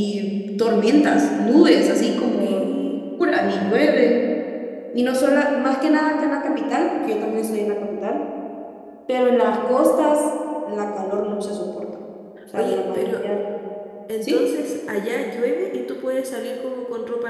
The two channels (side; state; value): both; identical; correlation 1.00